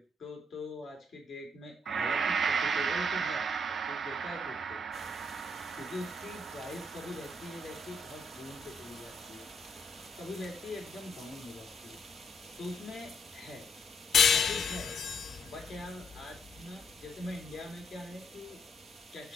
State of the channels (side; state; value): both; normal; correlation 0.74